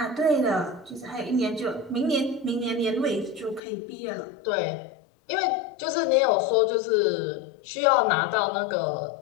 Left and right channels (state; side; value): drops out; right; at 3.6 s